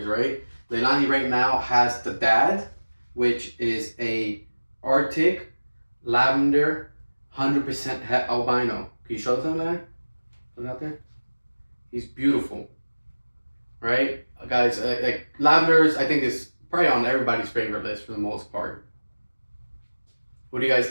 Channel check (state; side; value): inverted; both; correlation -1.00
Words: right? Leilani right now has the dad, which is a Arctic lavender, 100% het albino. Can you show them that? Look out there. He's beautiful, right, guys? Like lavenders, I think is probably on everybody's favorite list for the most part. What do you guys